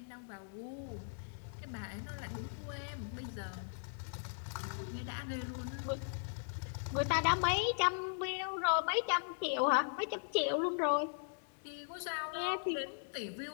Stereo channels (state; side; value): silent; right; digital silence